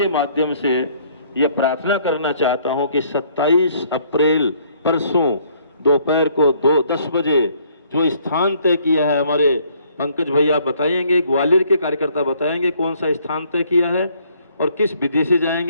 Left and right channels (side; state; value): both; inverted; correlation -0.63